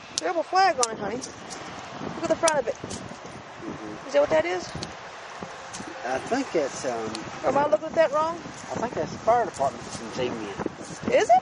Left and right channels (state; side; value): identical; both; correlation 1.00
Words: rebel flag on it, honey. Look at the front of it. Is that what that is? I think it's Am I looking at that wrong? I think that's the fire department's insignia. Is it?